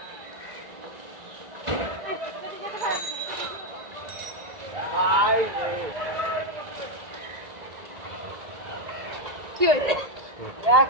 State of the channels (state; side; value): late; left; 1.9 ms